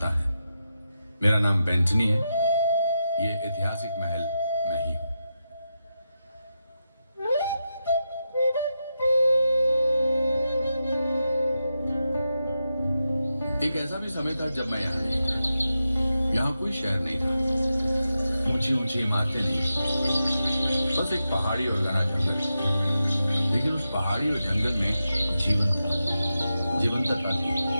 है। मेरा नाम बेंटनी है। ये ऐतिहासिक महल मैं ही हूँ। एक ऐसा भी समय था जब मैं यहाँ नहीं था। यहाँ कोई शहर नहीं था, ऊंची ऊंची इमारतें नहीं, बस एक पहाड़ी और घना जंगल। लेकिन उस पहाड़ी और जंगल में जीवन था, जीवंतता थी,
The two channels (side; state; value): both; inverted; correlation -0.88